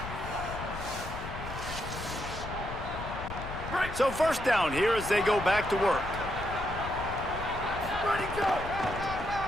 So 1st down here as they go back to work.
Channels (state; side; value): noise; left; rumble, 9 dB below the sound